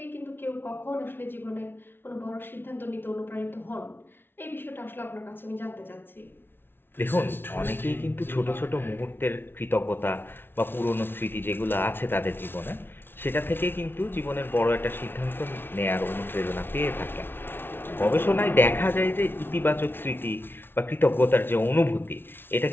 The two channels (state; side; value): late; right; 0.11 ms